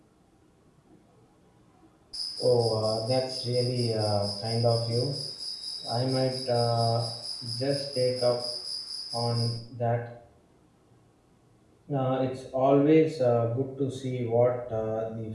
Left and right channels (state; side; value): identical; both; correlation 1.00